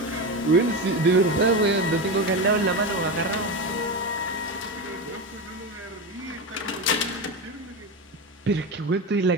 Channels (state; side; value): normal; both; correlation 0.18